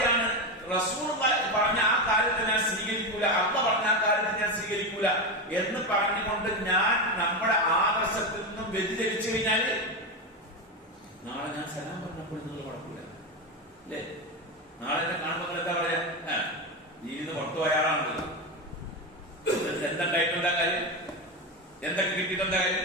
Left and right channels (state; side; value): normal; both; correlation 0.15